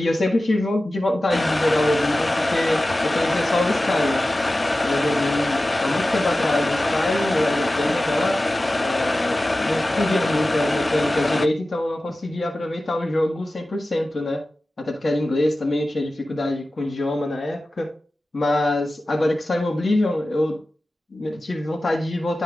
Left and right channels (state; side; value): normal; both; correlation 0.95